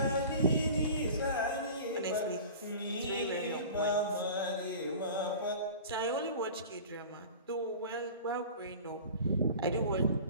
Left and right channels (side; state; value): both; inverted; correlation -0.38